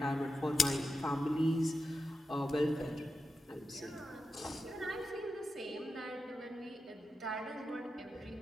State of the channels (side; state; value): both; normal; correlation 0.90